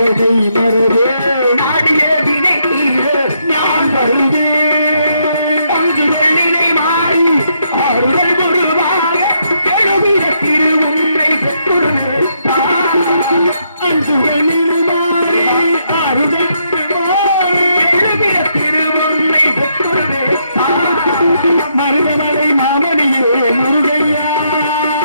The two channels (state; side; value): inverted; both; correlation -0.76